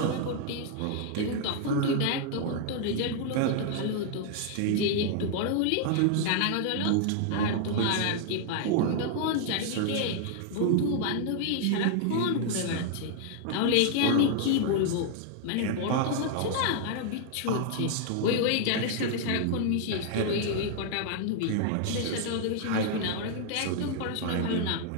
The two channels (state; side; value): different; both; correlation 0.00